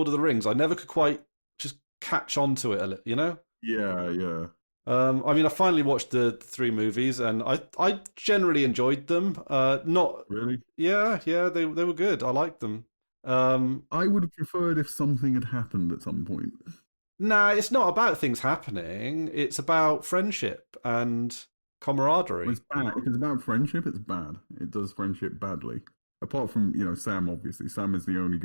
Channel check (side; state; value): both; inverted; correlation -1.00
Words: of the Rings. I never could quite just catch on to it, Yeah. I mean, I finally watched the 3 movies, and I generally enjoyed them. Not really. Yeah, they were good. I liked them. I would have preferred if something had happened at some point. Nah, it's not about things happening. It's about friendship and camaraderie. It's bad. If it's about friendship, it's bad. It does friendship badly. Apart from Sam, obviously, Sam is the only